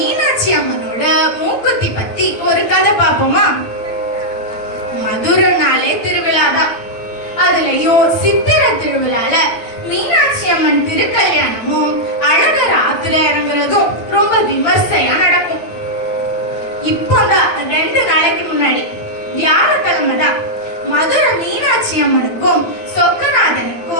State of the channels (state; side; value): late; right; 8.9 ms